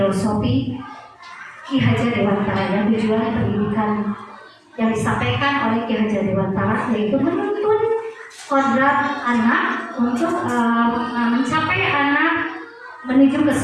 Ki Hajar Dewantara yang tujuan pendidikan yang disampaikan oleh Ki Hajar Dewantara yaitu menuntun kodrat anak untuk mencapai anak menuju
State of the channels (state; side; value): identical; both; correlation 1.00